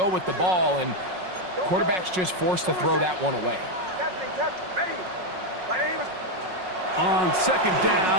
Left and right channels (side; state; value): left; late; 5.5 ms